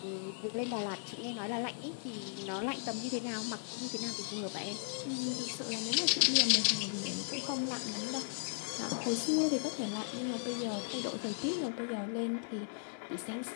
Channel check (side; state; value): right; silent; 53 dB below the other